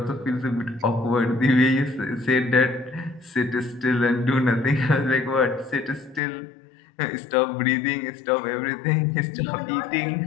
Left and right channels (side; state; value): right; drops out; at 6.2 s